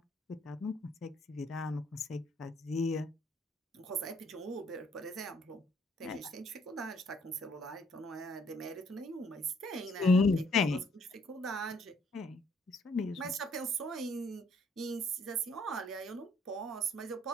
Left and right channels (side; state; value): both; normal; correlation 0.65